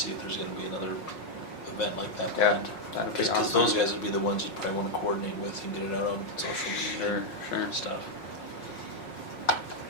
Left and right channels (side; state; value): right; late; 5.5 ms